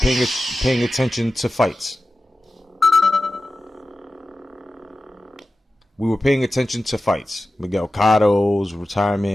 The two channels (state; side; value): normal; both; correlation 0.94